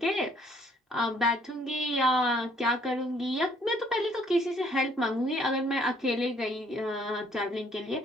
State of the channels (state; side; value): normal; both; correlation 0.63